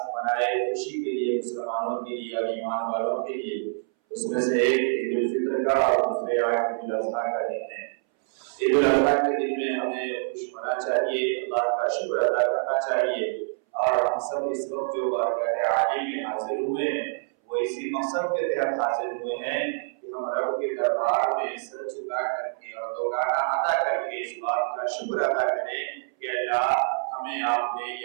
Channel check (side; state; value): left; silent; 61 dB below the other